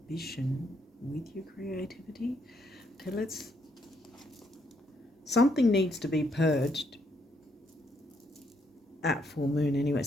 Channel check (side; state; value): both; normal; correlation 0.73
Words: with your creativity. Okay, something needs to be purged at full moon anyway.